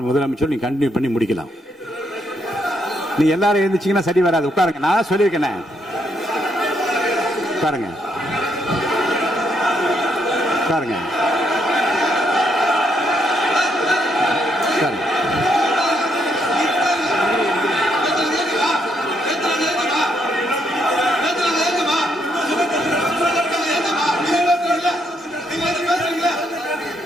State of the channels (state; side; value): normal; both; correlation 0.76